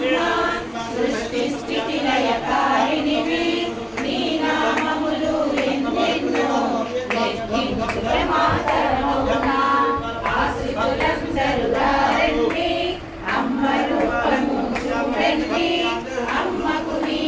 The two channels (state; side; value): identical; both; correlation 1.00